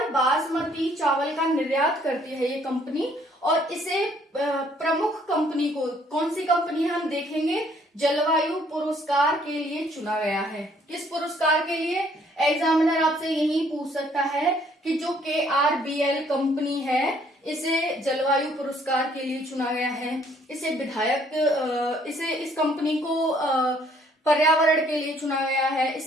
बासमती चावल का निर्यात करती है ये कंपनी और इसे प्रमुख कंपनी को, कौन सी कंपनी है हम देखेंगे, जलवायु पुरस्कार के लिए चुना गया है। किस पुरस्कार के लिए? एग्जामिनर आपसे यही पूछ सकता है कि जो KRBL कंपनी है इसे जलवायु पुरस्कार के लिए चुना गया है। इस कंपनी को पर्यावरण के लिए चुना गया है,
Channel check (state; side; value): normal; both; correlation 0.63